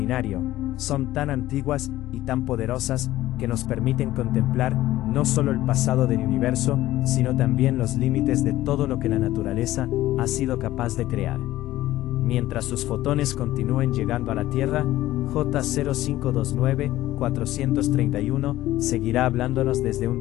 son tan antiguas y tan poderosas que nos permiten contemplar no solo el pasado del universo, sino también los límites de todo lo que la naturaleza ha sido capaz de crear. Mientras sus fotones continúen llegando a la Tierra, J0529-431 seguirá hablándonos desde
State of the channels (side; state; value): right; quieter; 15.4 dB